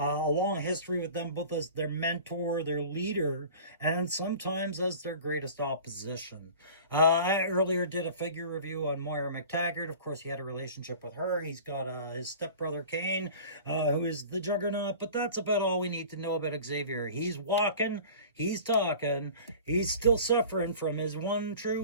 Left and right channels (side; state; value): both; inverted; correlation -0.41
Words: long history with them, both as their mentor, their leader, and sometimes as their greatest opposition. I earlier did a figure review on Moira McTaggart. Of course, he had a relationship with her. He's got his stepbrother Kane, who is the Juggernaut, but that's about all we need to know about Xavier. He's walking, he's talking, he's still suffering from his one true